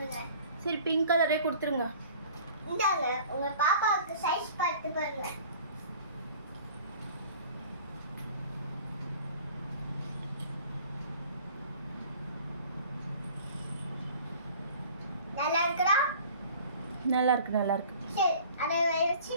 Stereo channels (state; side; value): inverted; both; correlation -0.47